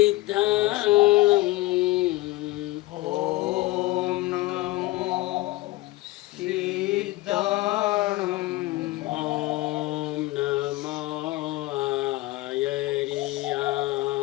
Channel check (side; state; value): right; quieter; 18.9 dB